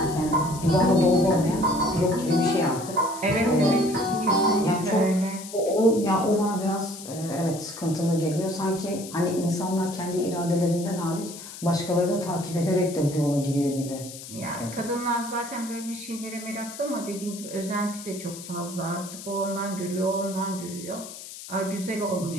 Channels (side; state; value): left; noise; hiss, 13 dB below the sound